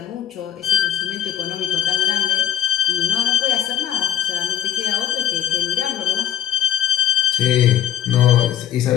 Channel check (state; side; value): quieter; right; 10.6 dB